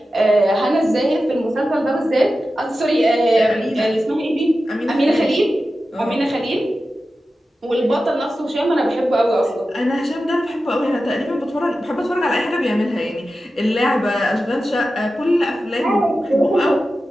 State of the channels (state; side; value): normal; both; correlation 0.93